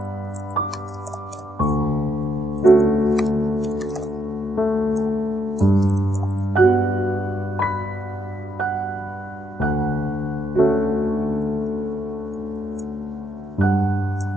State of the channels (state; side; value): normal; both; correlation 0.76